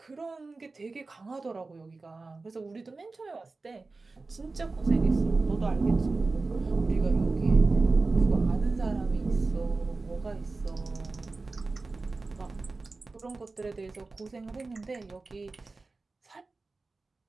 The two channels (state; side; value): quieter; left; 3.7 dB